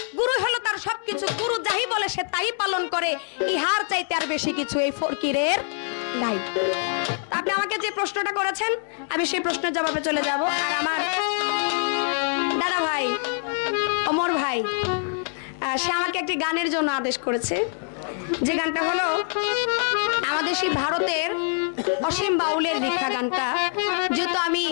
গুরুই হলো তার সবকিছু। গুরু যাই বলে সে তাই পালন করে, ইহার চাইতে আর বেশি কিছু এই ফকিরের নাই। আপনি আমাকে যে প্রশ্নটা করেছেন আমি সেই প্রশ্নের জবাবে চলে যাব। আর আমার দাদা ভাই ওমর ভাই সে আমাকে একটি গানের জন্য আদেশ করেছে, যে গানটা হলো আমাদের সেই ভারতের অসীম বাউলের লেখা গানটা। যেহেতু আমি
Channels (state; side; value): silent; right; 56 dB below the other